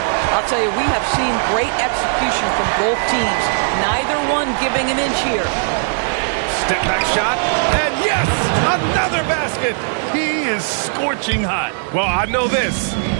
I'll tell you, we have seen great execution from both teams. Neither one giving an inch here. Step back shot. And yes, another basket. He is scorching hot. Well, I know this.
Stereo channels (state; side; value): silent; left; 67 dB below the other